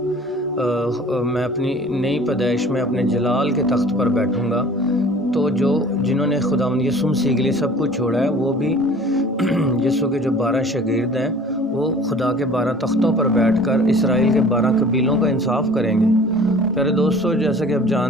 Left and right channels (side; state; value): both; normal; correlation 0.47